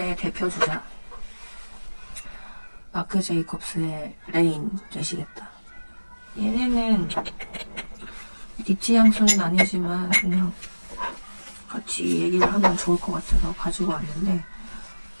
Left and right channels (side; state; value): both; inverted; correlation -1.00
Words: 대표 주자 마크 제이콥스의 레인 되시겠다. 얘네는 니치 향수는 아니지만 그냥 같이 얘기를 하면 좋을 것 같아서 가지고 왔는데